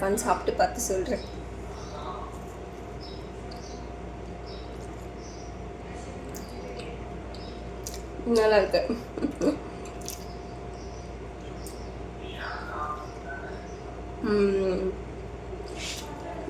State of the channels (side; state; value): both; identical; correlation 1.00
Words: சாப்பிட்டு பார்த்து சொல்கிறேன். நல்லா இருக்கு.